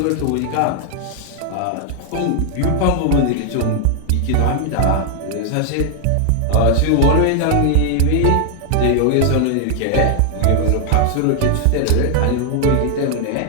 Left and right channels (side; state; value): both; different; correlation 0.00